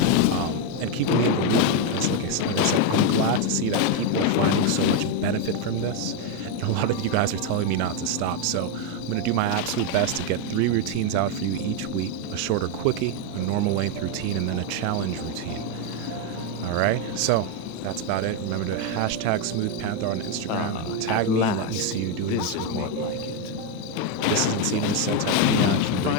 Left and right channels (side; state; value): both; different; correlation 0.02